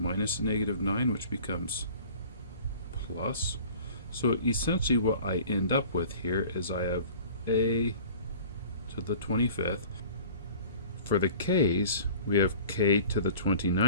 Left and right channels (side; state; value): both; inverted; correlation -0.44